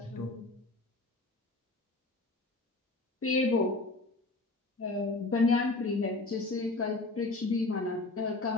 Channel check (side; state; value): right; quieter; 3.2 dB